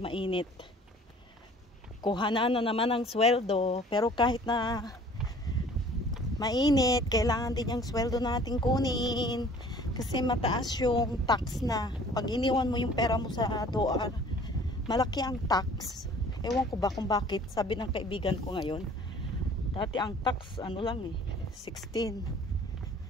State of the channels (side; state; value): both; normal; correlation 0.51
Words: Kuha na naman ang sweldo. Pero kahit na mainit, kailangan din yung sweldo natin kunin. Kasi mataas yung tax na. Pag iniwan mo yung pera mo sa DOAR, malaki ang tax. Ewan ko ba kung bakit. Sabi ng kaibigan ko ngayon. Dati ang tax, ano lang 16.